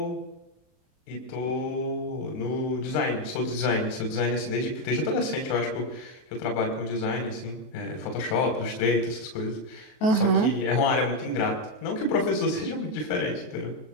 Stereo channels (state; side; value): late; right; 23 ms